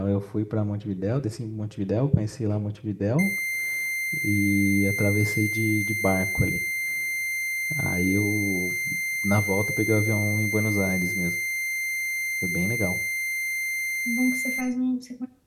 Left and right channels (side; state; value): both; identical; correlation 1.00